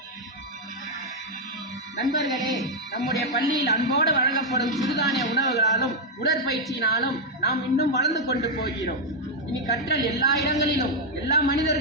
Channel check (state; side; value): normal; both; correlation 0.00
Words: நண்பர்களே, நம்முடைய பள்ளியில் அன்போடு வழங்கப்படும் சிறுதானிய உணவுகளாலும் உடற்பயிற்சியினாலும் நாம் இன்னும் வளர்ந்து கொண்டு போகிறோம். இனி கற்றல் எல்லா இடங்களிலும் எல்லா